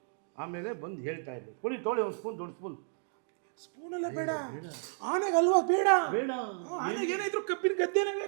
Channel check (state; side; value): silent; left; digital silence